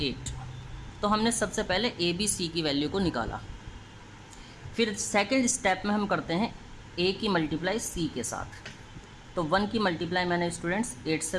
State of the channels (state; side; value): identical; both; correlation 1.00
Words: 8। तो हमने सबसे पहले a b c की वैल्यू को निकाला। फिर सेकंड स्टेप में हम करते हैं a की मल्टीप्लाई c के साथ। तो 1 की मल्टीप्लाई मैंने स्टूडेंट्स 8 से